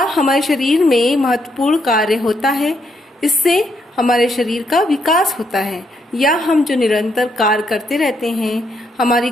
हमारे शरीर में महत्वपूर्ण कार्य होता है। इससे हमारे शरीर का विकास होता है, या हम जो निरंतर कार्य करते रहते हैं, हमारी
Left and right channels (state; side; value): normal; both; correlation 0.76